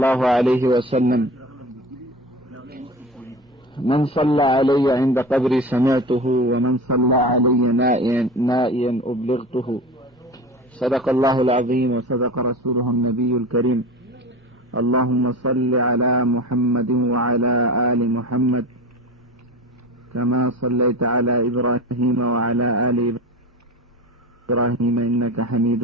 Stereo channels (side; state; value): both; normal; correlation 0.31